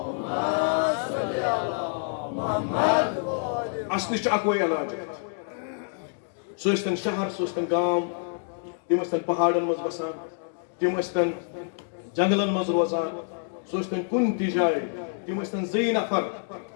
وسلم اصل اکوے علاج سہ ٲسۍتن شہر سہ ٲسۍتن گام تم ٲسۍتن پہاڑن مز بسان تم ٲسۍتن جنگلن مز روزان سہ ٲسۍتن کُنہِ تہِ جایہِ تم ٲسۍتن زٕے نفر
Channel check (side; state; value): right; silent; digital silence